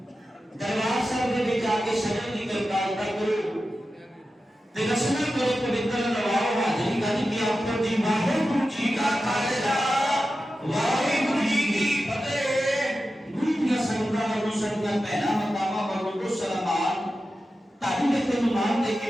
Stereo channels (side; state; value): both; normal; correlation 0.92